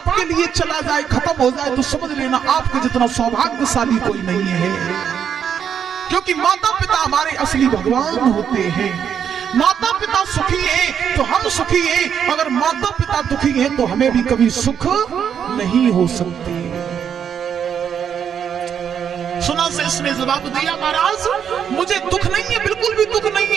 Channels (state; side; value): quieter; left; 8.1 dB